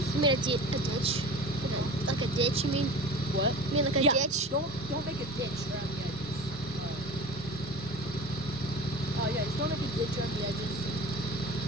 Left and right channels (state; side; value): normal; both; correlation 0.35